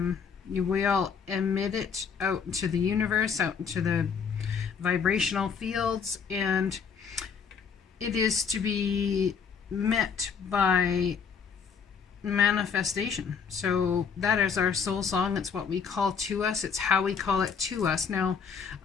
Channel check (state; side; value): quieter; right; 6.4 dB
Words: We all emit it out into the universe, out into the vibrational fields, and it is to be met by manifestation. So that is our soul song. It's what we call to us. It's how we call it to us. Now